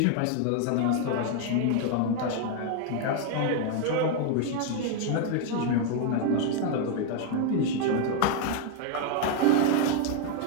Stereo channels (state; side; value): different; both; correlation 0.00